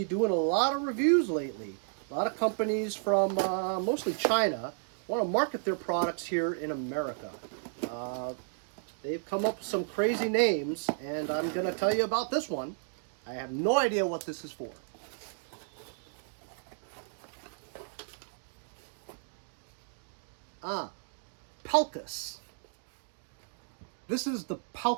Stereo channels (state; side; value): silent; left; digital silence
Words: doing a lot of reviews lately. A lot of companies from mostly China want to market their products here in America. They've come up with some crazy names, and I'm going to tell you about this one. I have no idea what this is for. PELCAS. This is the